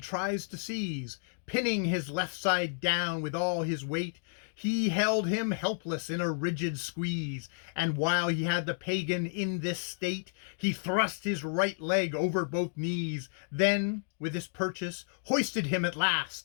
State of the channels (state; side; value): silent; right; digital silence